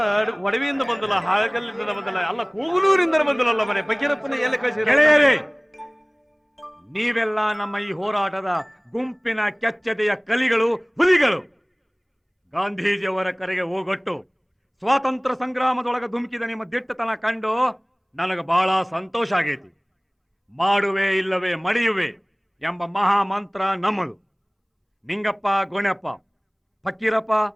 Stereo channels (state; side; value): identical; both; correlation 1.00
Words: ಒಡವಿಯಿಂದ ಬಂದಲ್ಲ, ಹಾಗಲ್ಲಿಂದ ಬಂದಲ್ಲ, ಅಲ್ಲ ಕೂಗಲೂರಿಂದ ಬಂದಲ್ಲ. ಮನೆ ಫಕೀರಪ್ಪನ ಎಲ್ಲಿ ಕಳಿಸಿ? ಗೆಳೆಯರೇ, ನೀವೆಲ್ಲ ನಮ್ಮ ಈ ಹೋರಾಟದ ಗುಂಪಿನ ಕೆಚ್ಚದೆಯ ಕಲಿಗಳು, ಹುಲಿಗಳು. ಗಾಂಧೀಜಿಯವರ ಕರೆಗೆ ಹೋಗೊಟ್ಟು ಸ್ವಾತಂತ್ರ್ಯ ಸಂಗ್ರಾಮದೊಳಗೆ ಧುಮುಕಿದ ನಿಮ್ಮ ದಿಟ್ಟತನ ಕಂಡು ನನಗೆ ಬಹಳ ಸಂತೋಷ ಆಗೈತಿ. ಮಾಡುವೆ ಇಲ್ಲವೇ ಮಡಿಯುವೆ ಎಂಬ ಮಹಾ ಮಂತ್ರ ನಮ್ಮದು. ನಿಂಗಪ್ಪ, ಗೋಣಪ್ಪ, ಫಕೀರಪ್ಪ,